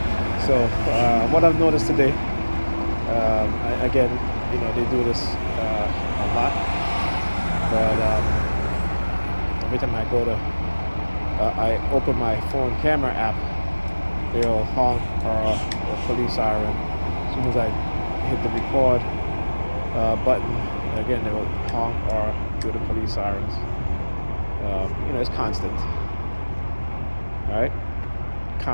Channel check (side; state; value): both; inverted; correlation -1.00